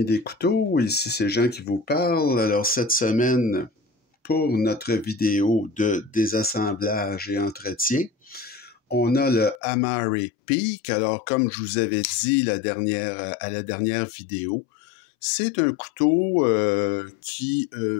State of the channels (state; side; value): drops out; right; at 9.6 s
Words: des couteaux, ici c'est Jean qui vous parle. Alors cette semaine, pour notre vidéo de désassemblage et entretien, on a le Amari Peak. Alors comme je vous avais dit à la dernière vidéo, c'est un couteau qui